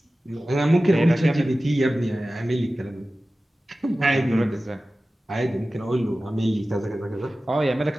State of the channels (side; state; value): both; normal; correlation 0.96